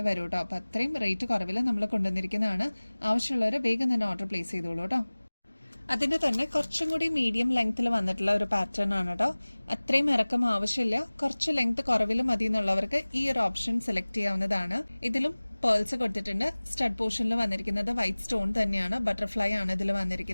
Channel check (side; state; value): both; inverted; correlation -1.00